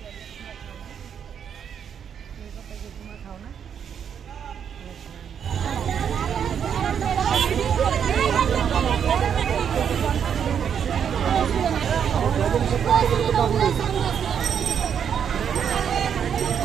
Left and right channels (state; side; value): quieter; left; 8.0 dB